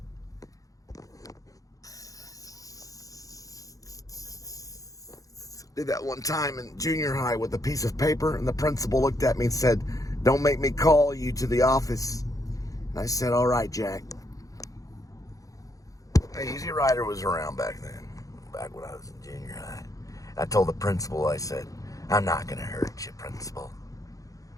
Did that one time in junior high with a piece of paper, and the principal looked at me and said, don't make me call you to the office. And I said, all right, Jack. Hey, Easy Rider was around back then, back when I was in junior high. I told the principal, I said, I'm not going to hurt you, principal.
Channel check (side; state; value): right; late; 0.17 ms